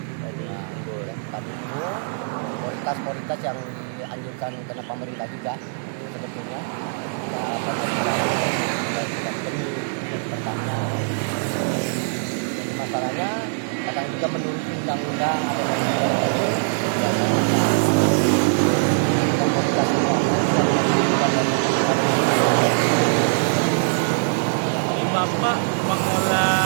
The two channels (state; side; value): silent; left; 57 dB below the other